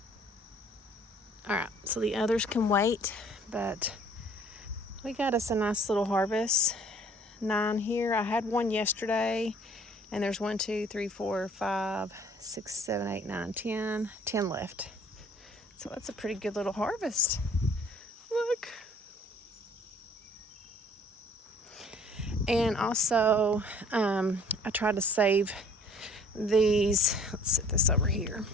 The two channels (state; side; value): normal; both; correlation 0.55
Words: All right, so the others can wait, but we got us a nice little harvest. 9 here. I had one yesterday, and there's 1, 2, 3, 4, 5, 6, 7, 8, 9, 10. 10 left. So that's a pretty good little harvest. Look. And also, I tried to save these. Let's set this over here.